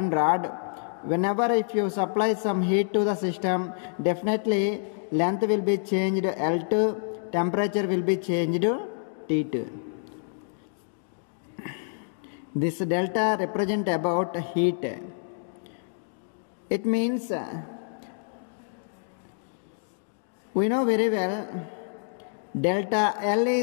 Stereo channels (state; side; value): silent; right; digital silence